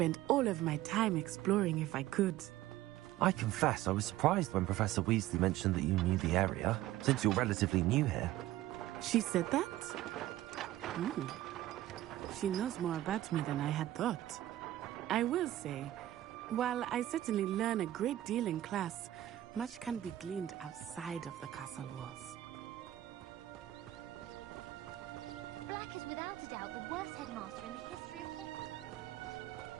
all of my time exploring if I could. I confess I was surprised when Professor Weasley mentioned that you knew the area, since you're relatively new here. She said that? She knows more about me than I had thought. I will say, while I certainly learn a great deal in class, much can be gleaned outside of the castle walls. Black is without a doubt the worst headmaster in the history of Hogwarts.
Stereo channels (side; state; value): left; quieter; 14.5 dB